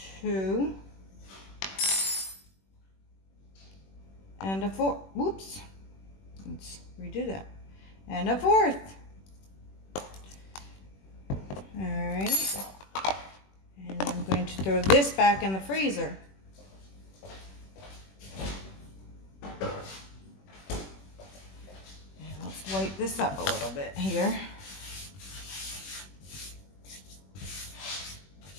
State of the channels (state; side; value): late; right; 21 ms